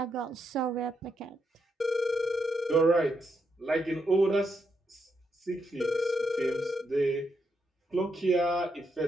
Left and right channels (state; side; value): normal; both; correlation 0.80